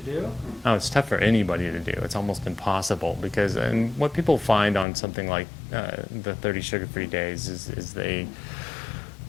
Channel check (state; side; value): drops out; right; at 4.9 s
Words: Oh, it's tough for anybody to do. It's almost impossible because, and what people find on something like the 30 sugar-free days is